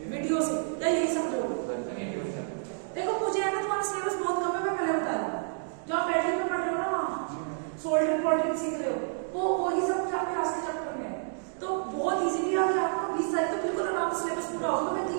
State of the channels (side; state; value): left; silent; digital silence